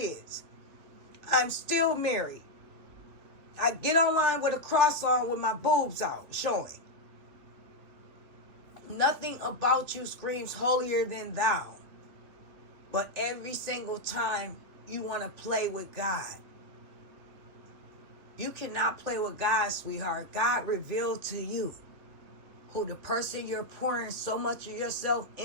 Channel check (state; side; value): late; left; 3.1 ms